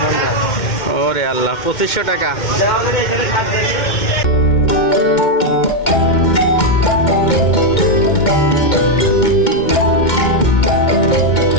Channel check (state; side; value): late; right; 2.1 ms